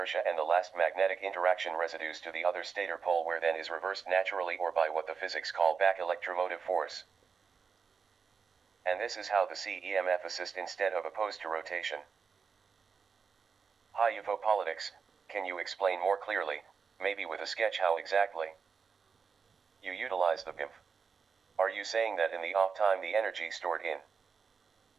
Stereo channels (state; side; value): quieter; left; 5.6 dB